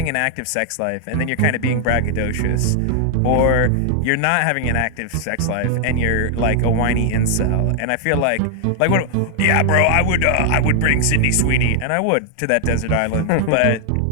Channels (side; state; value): both; different; correlation 0.00